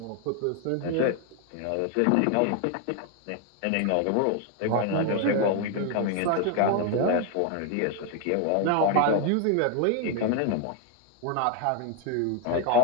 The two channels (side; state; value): both; different; correlation 0.01